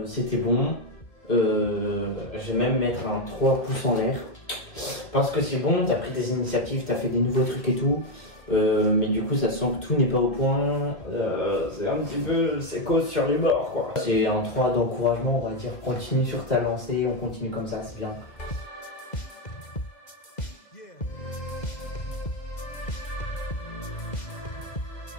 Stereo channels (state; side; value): late; right; 2.0 ms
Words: C'était bon. Je vais même mettre un 3 pouces en l'air. Parce que c'est bon, t'as pris des initiatives, t'as fait des nouveaux trucs et tout. Mais du coup, ça sent que tout n'est pas au point. C'est un petit peu. C'est cause sur les bords, quoi. C'est un 3 d'encouragement, on va dire. Continue sur ta lancée, on continue comme ça, c'est bien.